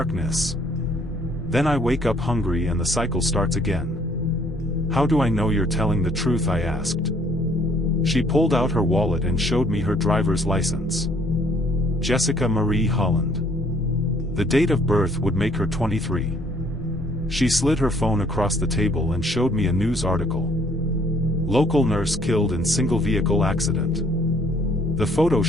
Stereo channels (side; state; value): both; normal; correlation 0.62